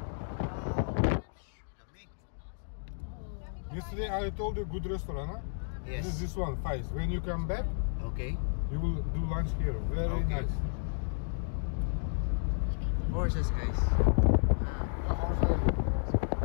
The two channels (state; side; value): silent; right; digital silence